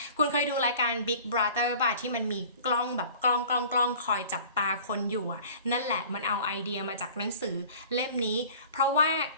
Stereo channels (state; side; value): inverted; both; correlation -0.46